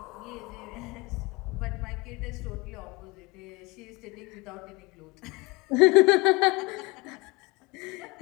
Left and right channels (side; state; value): right; quieter; 25.6 dB